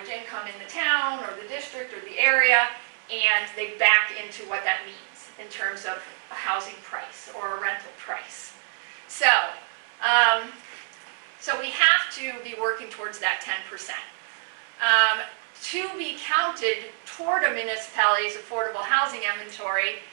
income in the town or the district or the area, and they back into what that means in terms of a housing price or a rental price. So we have to be working towards that 10%. To be counted toward a municipality's affordable housing inventory,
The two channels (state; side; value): silent; left; 61 dB below the other